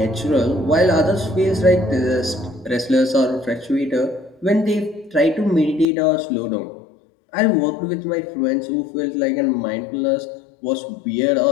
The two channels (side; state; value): right; drops out; at 5.9 s